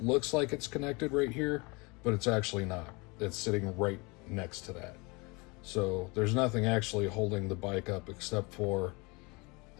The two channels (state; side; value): quieter; right; 27.3 dB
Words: looks like it's connected right here, but it's actually not. It's sitting right next to that. So there's nothing actually holding the bike up except for